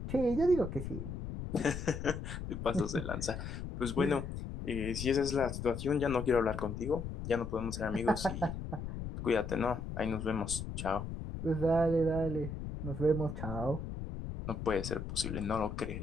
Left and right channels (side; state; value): left; noise; rumble, 6 dB below the sound